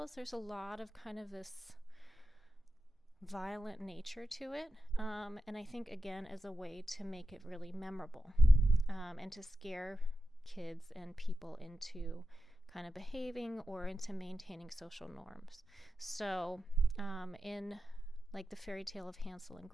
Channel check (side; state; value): both; normal; correlation 0.90